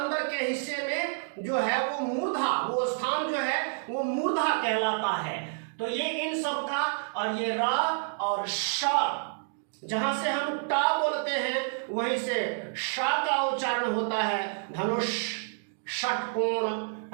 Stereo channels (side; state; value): left; silent; digital silence